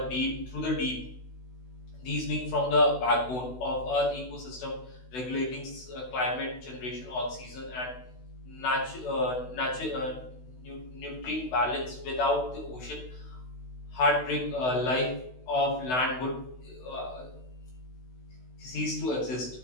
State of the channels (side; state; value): right; late; 16 ms